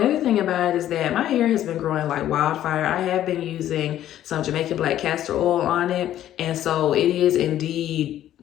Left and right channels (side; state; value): right; quieter; 12.1 dB